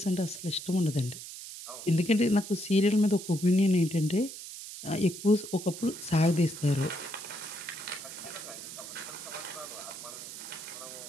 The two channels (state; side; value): noise; right; hiss, 11 dB below the sound